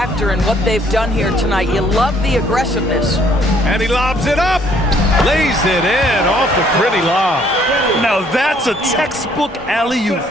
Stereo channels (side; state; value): both; normal; correlation 0.63